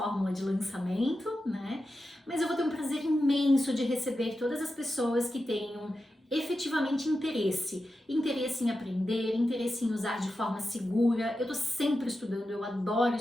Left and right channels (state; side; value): normal; both; correlation 0.90